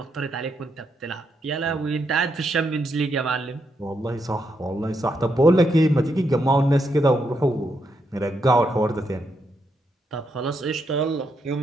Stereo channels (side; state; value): both; normal; correlation 0.80